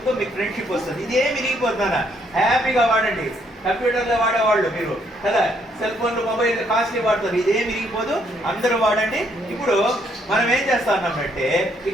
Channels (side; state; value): both; normal; correlation 0.70